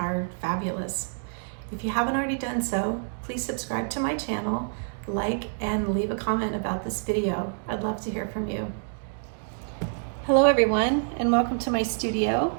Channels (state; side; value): silent; left; digital silence